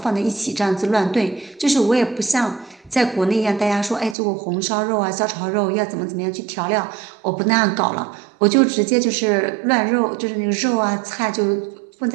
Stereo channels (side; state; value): left; drops out; at 4.2 s